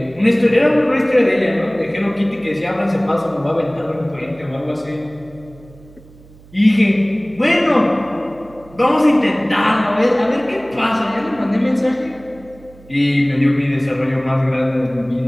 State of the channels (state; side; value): noise; right; hum, 24 dB below the sound